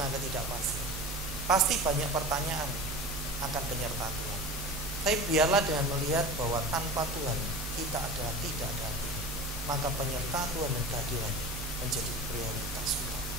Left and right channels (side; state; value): both; normal; correlation 0.34